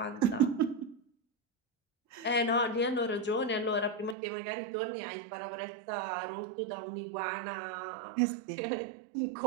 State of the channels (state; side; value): drops out; left; at 4.2 s